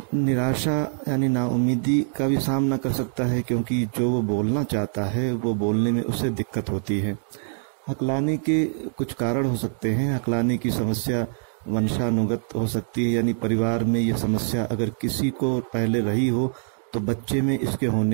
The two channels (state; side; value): silent; left; digital silence